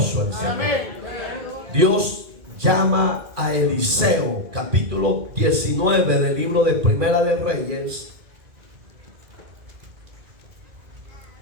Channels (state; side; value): late; left; 2.4 ms